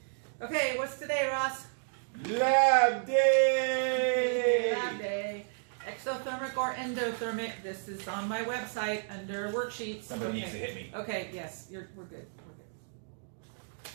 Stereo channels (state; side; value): silent; left; digital silence